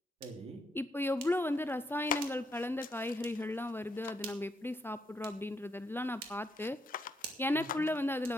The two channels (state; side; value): normal; both; correlation 0.77